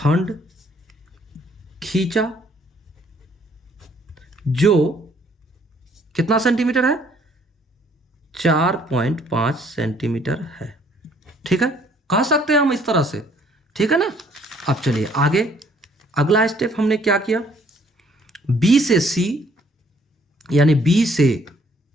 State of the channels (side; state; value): both; normal; correlation 0.62